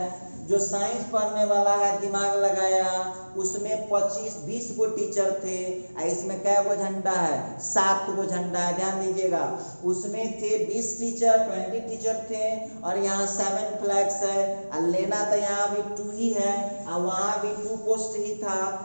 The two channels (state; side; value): inverted; both; correlation -1.00